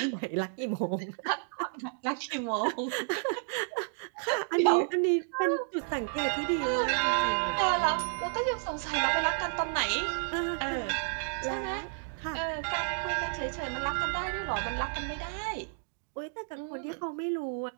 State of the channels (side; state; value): left; silent; digital silence